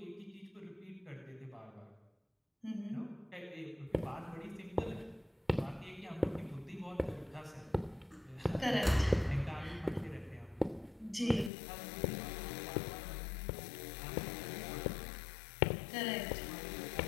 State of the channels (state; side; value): drops out; right; at 11.5 s